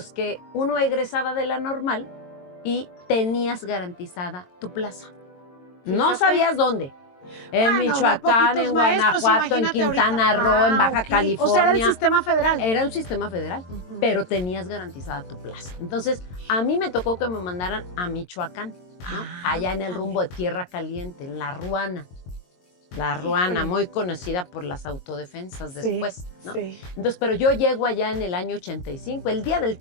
que uno egresaba de la normal y tenías garantizada tu plaza. No sabías dónde. En Michoacán, en Guanajuato, en Quintana Roo, en Baja California. O sea, era el sistema federal. Era un sistema federal, pero tenías garantizada tu plaza. Entonces, a mí me tocó que me mandaran a Michoacán, ¿no? Allá en el rumbo de Tierra Caliente, en La Ruana. La Ruana, muy conocida por las autodefensas después, ¿no? Sí. Entonces, pero yo llego allá en el año 85, el día del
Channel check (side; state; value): right; late; 22 ms